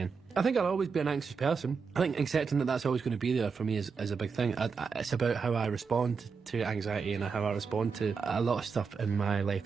I think I'll always be an anxious person. I think accepting that that's always going to be there for me is a big thing. It's about how I respond to anxiety and how I respond to a lot of stuff in my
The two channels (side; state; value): left; quieter; 5.4 dB